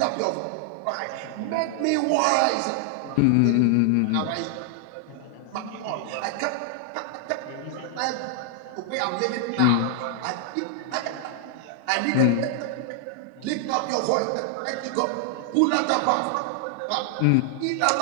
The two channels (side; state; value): both; different; correlation 0.00